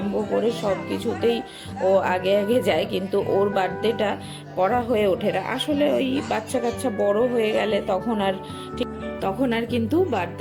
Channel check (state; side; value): identical; both; correlation 1.00